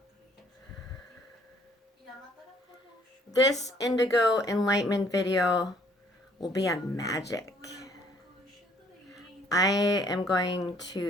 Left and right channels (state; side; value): normal; both; correlation 0.61